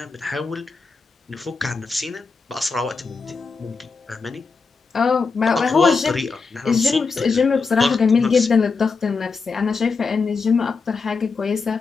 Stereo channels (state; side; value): quieter; right; 4.7 dB